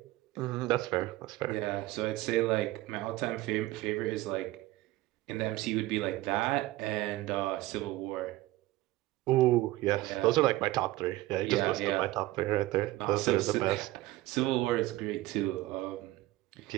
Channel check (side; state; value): left; quieter; 17.7 dB